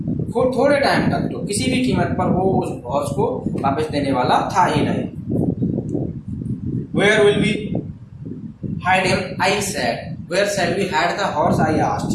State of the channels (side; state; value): both; identical; correlation 1.00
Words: थोड़े टाइम तक तो किसी भी कीमत पर वो उस हॉर्स को वापस देने वाला था ही नहीं। Where will we hide him? I said. Where shall we hide the horse? I asked.